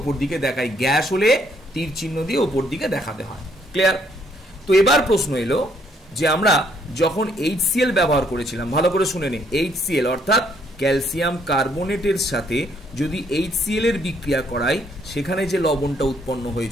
দিকে দেখাই, গ্যাস হলে তীর চিহ্ন দিয়ে ওপর দিকে দেখাতে হয়। ক্লিয়ার? তো এবার প্রশ্ন এলো যে আমরা যখন HCl ব্যবহার করেছিলাম, ভালো করে শুনে নে, HCl অর্থাৎ ক্যালসিয়াম কার্বনেটের সাথে যদি HCl এর বিক্রিয়া করাই, সেখানে যে লবণটা উৎপন্ন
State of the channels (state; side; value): normal; both; correlation 0.68